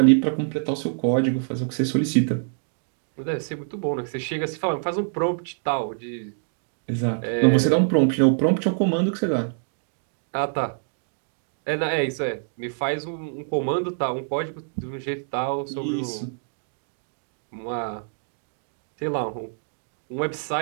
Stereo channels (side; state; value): left; silent; digital silence